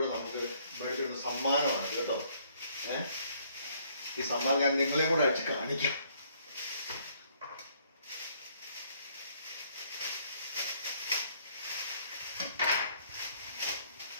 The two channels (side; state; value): both; inverted; correlation -0.65